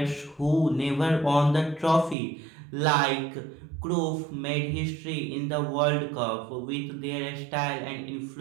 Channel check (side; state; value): left; drops out; at 2.1 s